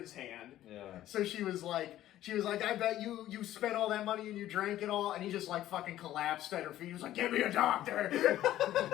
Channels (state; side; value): quieter; right; 13.4 dB